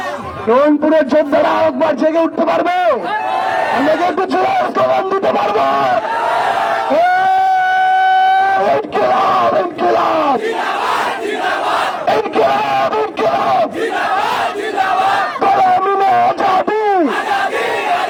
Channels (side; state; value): both; identical; correlation 1.00